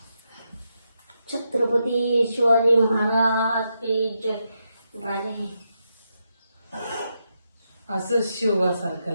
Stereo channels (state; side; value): inverted; both; correlation -0.83